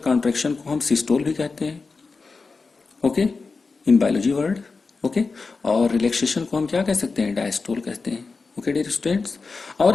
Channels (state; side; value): quieter; right; 4.3 dB